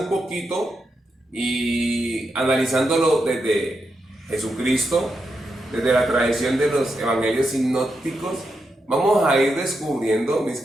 poquito y analizándolo desde Jesucristo, desde la tradición de los evangelios sinópticos, vamos a ir descubriendo, mis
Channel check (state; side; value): normal; both; correlation 0.85